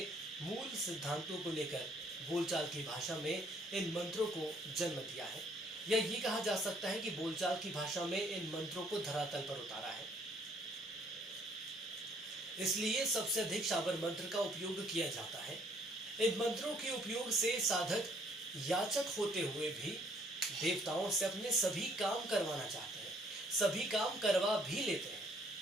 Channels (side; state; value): both; normal; correlation 0.63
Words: मूल सिद्धांतों को लेकर बोलचाल की भाषा में इन मंत्रों को जन्म दिया है, या ये कहा जा सकता है कि बोलचाल की भाषा में इन मंत्रों को धरातल पर उतारा है। इसलिए सबसे अधिक शाबर मंत्र का उपयोग किया जाता है। इन मंत्रों के उपयोग से साधक याचक होते हुए भी देवताओं से अपने सभी काम करवाना चाहते हैं, सभी काम करवा भी लेते हैं